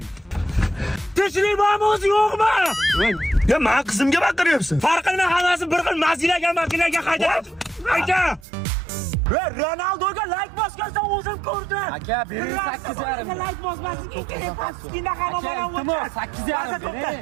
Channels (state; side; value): drops out; left; at 8.5 s